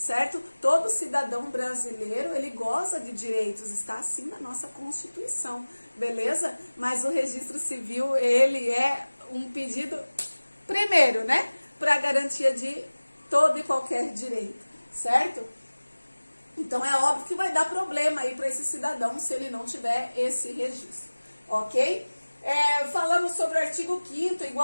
Todo cidadão brasileiro, ele goza de direitos, está assim na nossa Constituição, beleza? Mas o registro civil, ele é um pedido, primeiro, né? Para a garantia de todo e qualquer direito, certo? Então é óbvio que vai dar problema aí para esse cidadão se ele não tiver esse registro, ok? Falamos sobre o artigo 5º,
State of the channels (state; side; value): inverted; both; correlation -1.00